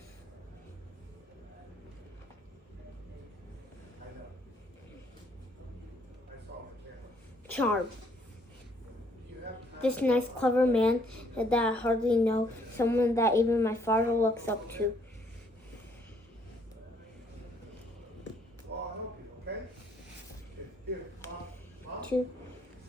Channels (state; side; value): normal; both; correlation 0.66